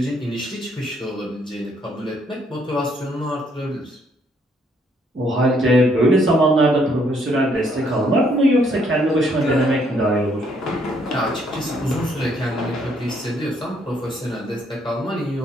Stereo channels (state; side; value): normal; both; correlation 0.69